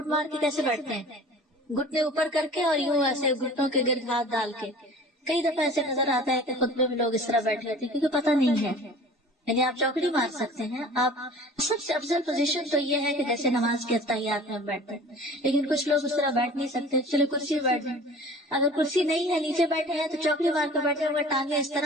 مار کے کیسے بیٹھتے ہیں؟ گھٹنے اوپر کر کے اور یوں ایسے گھٹنوں کے گرد ہاتھ ڈال کے۔ کئی دفعہ ایسے نظر آتا ہے کہ خطبے میں لوگ اس طرح بیٹھے ہوتے ہیں کیونکہ پتہ نہیں ہے، یعنی آپ چوکڑی مار سکتے ہیں۔ آپ سب سے افضل پوزیشن تو یہ ہے کہ جیسے نماز کے اتحیات میں بیٹھتے ہیں، لیکن کچھ لوگ اس طرح بیٹھ نہیں سکتے، چلو کرسی میں بیٹھ جائیں۔ اگر کرسی نہیں ہے نیچے بیٹھے ہیں تو چوکڑی مار کے بیٹھے ہوئے، ٹانگیں اس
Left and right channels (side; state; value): both; normal; correlation 0.44